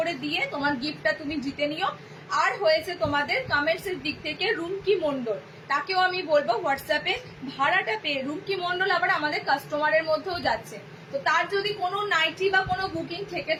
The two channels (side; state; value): both; identical; correlation 1.00